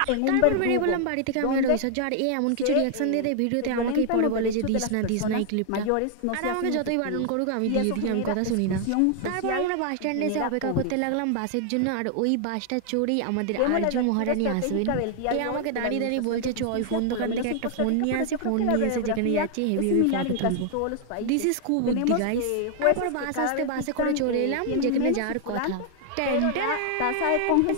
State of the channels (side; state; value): both; different; correlation 0.00